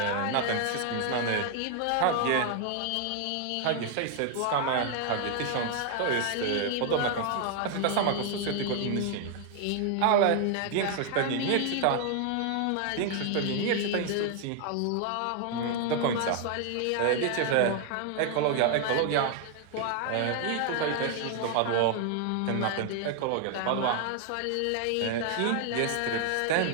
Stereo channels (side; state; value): both; different; correlation 0.00